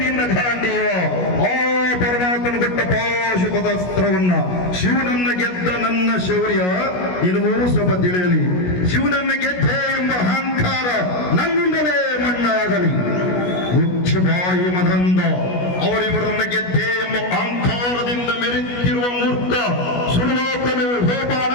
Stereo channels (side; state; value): right; late; 16 ms